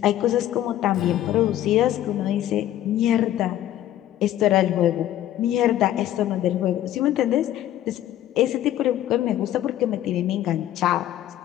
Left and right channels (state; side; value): quieter; right; 12.7 dB